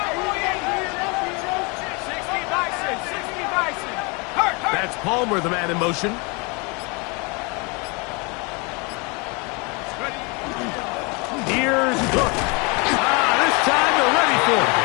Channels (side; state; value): right; quieter; 30.1 dB